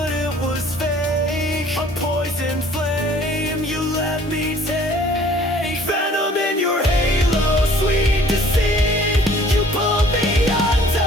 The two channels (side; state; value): both; normal; correlation 0.54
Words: it was fake, a poison flame you let me take. Venom in your halo, sweet deceit. You pulled me